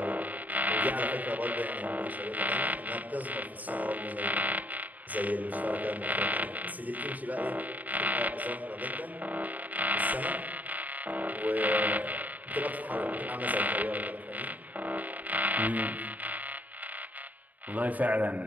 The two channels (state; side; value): late; left; 0.078 ms